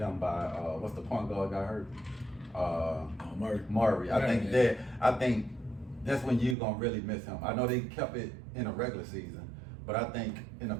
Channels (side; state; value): left; drops out; at 6.6 s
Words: by what's the point guard got hurt? Murray. I think that's when you're gonna really miss him. I know they kept it in a regular season, but I think in the